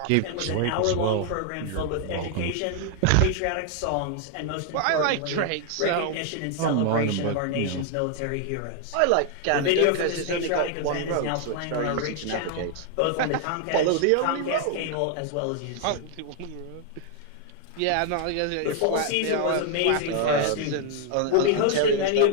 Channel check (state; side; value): different; both; correlation 0.00